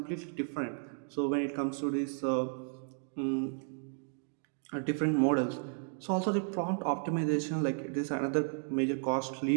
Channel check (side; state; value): left; silent; 55 dB below the other